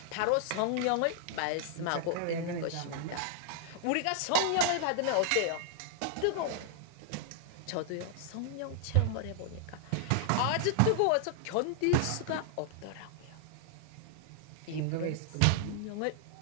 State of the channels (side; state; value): both; different; correlation -0.01